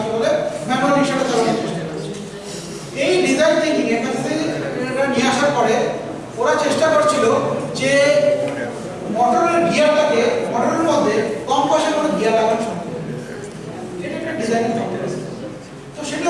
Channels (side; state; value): both; identical; correlation 1.00